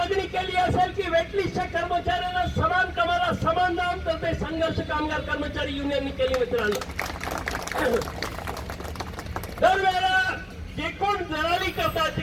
केली असेल की वेटलिस्टच्या कर्मचाऱ्यांना समान कामाला समान दाम, तर ते संघर्ष कामगार कर्मचारी युनियनने केली. मित्रांनो, दरवेळेला जे कोण दलाली करतात ते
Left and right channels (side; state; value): both; identical; correlation 1.00